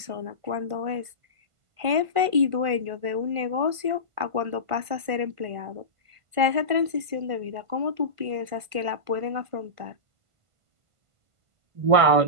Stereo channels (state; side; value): late; left; 1.5 ms